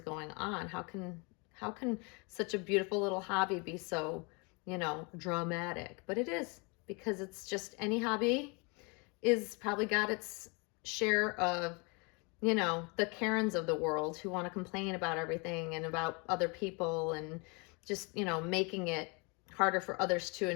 on? How can such a beautiful little hobby be so, dramatic? But it is, because it's just, any hobby is probably got its share of, the Karens of the world who want to complain about everything and about other people and just, making it harder for others to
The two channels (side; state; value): right; quieter; 31.0 dB